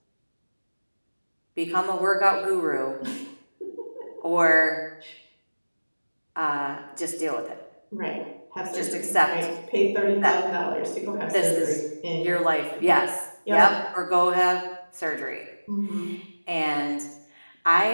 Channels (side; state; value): both; inverted; correlation -1.00